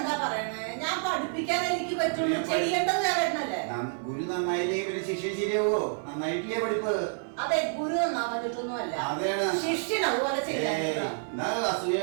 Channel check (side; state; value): left; silent; digital silence